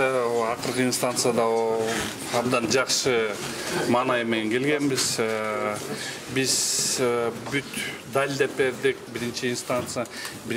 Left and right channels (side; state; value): both; identical; correlation 1.00